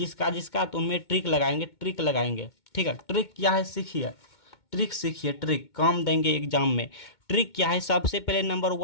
तो उनमें ट्रिक लगाएंगे। ठीक है, ट्रिक क्या है सीखिए, ट्रिक काम देंगे एग्जाम में। ट्रिक क्या है, सबसे पहले नंबर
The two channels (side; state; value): right; late; 2.2 ms